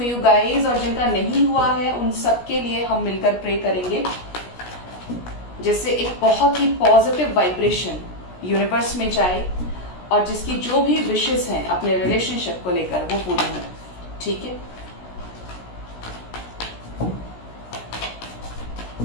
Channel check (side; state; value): right; late; 16 ms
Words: guys. और जिनका नहीं हुआ है उन सबके लिए हम मिलकर प्रे करेंगे, जिससे एक बहुत ही पॉजिटिव वाइब्रेशन यूनिवर्स में जाए और जिसकी जो भी विशेस हैं अपने रिलेशनशिप को लेकर वो पूरी हो। ठीक है,